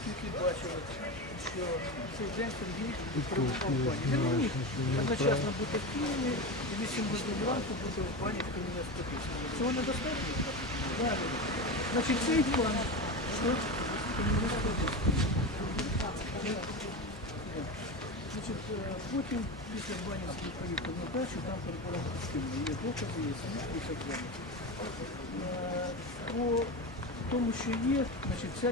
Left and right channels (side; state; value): both; normal; correlation 0.21